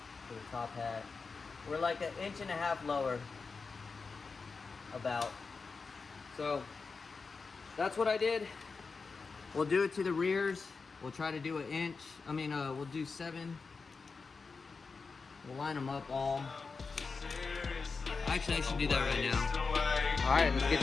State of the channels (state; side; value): quieter; right; 4.6 dB